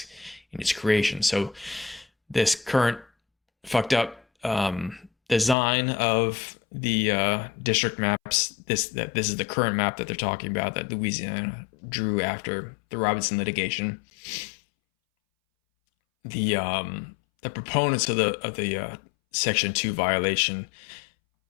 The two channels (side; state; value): right; drops out; at 5.6 s